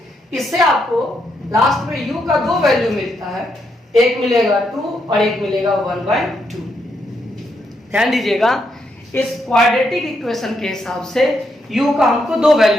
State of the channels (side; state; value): both; normal; correlation 0.79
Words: इससे आपको लास्ट में u का 2 वैल्यू मिलता है, एक मिलेगा 2 और एक मिलेगा 1/2। ध्यान दीजिएगा, इस क्वाड्रेटिक इक्वेशन के हिसाब से u का हमको 2